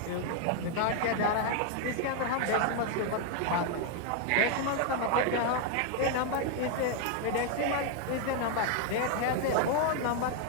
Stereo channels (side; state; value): both; different; correlation 0.00